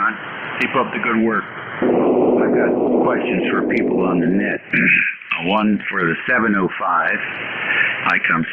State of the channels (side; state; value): both; identical; correlation 1.00